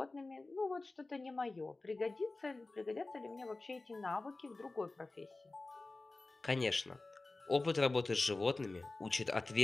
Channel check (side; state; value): right; quieter; 3.2 dB